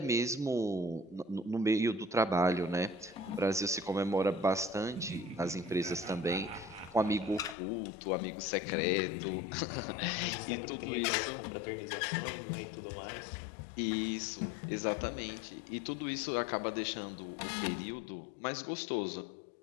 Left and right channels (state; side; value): drops out; right; at 7.6 s